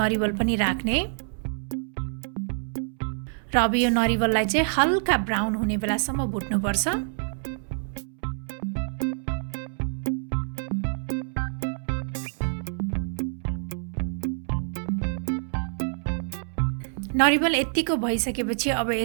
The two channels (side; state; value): left; silent; 60 dB below the other